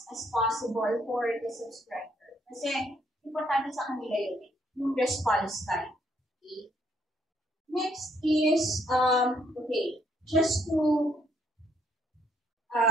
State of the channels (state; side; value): normal; both; correlation 0.70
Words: as possible for the subscriber. Kasi, importante sa kanila yun, yung response time. Okay? Next is, okay, just to